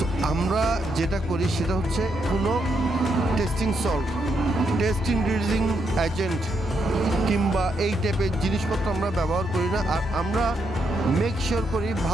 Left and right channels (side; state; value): both; normal; correlation 0.79